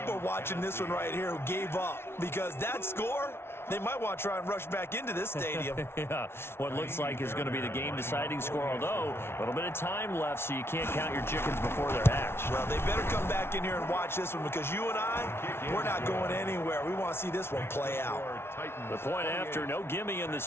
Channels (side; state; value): right; late; 0.12 ms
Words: are watching this one right here who gave up? Because that score, they might want to try and rush back into this stadium. Yeah, what looks like is going to be the game-deciding score, although a little bit of time left, so you can't count your chickens before they're hatched. Well, they better come back in here and watch this one, because you and I, we're not going anywhere. We want to see this one play out. The point after, no gimme in the